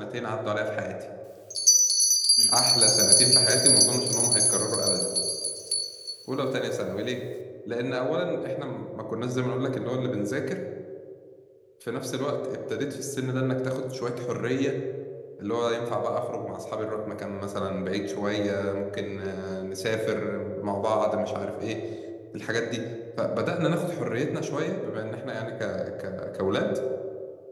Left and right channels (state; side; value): identical; both; correlation 1.00